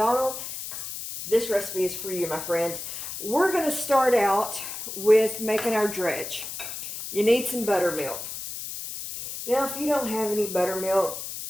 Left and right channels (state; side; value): noise; left; hiss, 8 dB below the sound